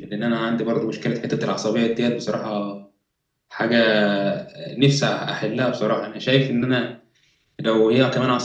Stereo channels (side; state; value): both; identical; correlation 1.00